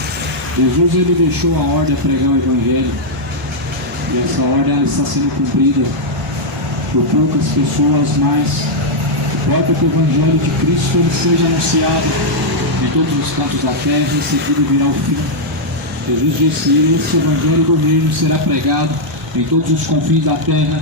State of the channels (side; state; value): both; normal; correlation -0.04